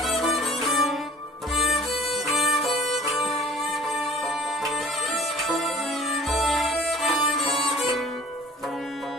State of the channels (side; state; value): both; normal; correlation 0.48